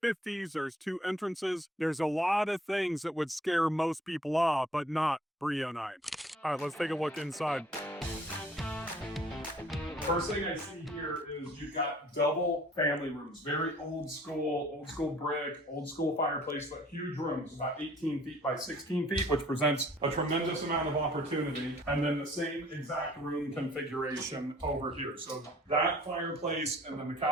There's 2 entrances. There's a lot of things that would scare most people off, but not Brea and I. All right, let's take a look inside. First thing I see here is you've got double family rooms, very old school brick, old school fireplace, but huge rooms, about 18 feet by 16 feet, which presents a tremendous amount of opportunity. And then the same exact room configuration over here. So that fireplace and then the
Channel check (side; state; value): both; normal; correlation 0.56